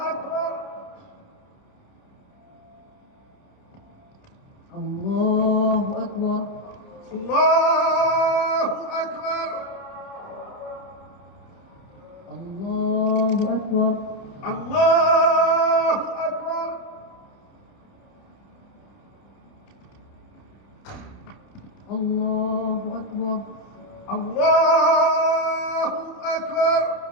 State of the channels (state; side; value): late; right; 29 ms